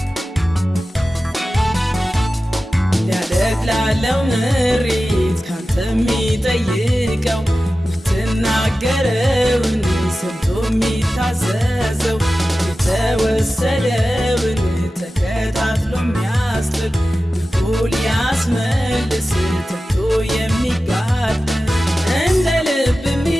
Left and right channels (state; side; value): normal; both; correlation 0.95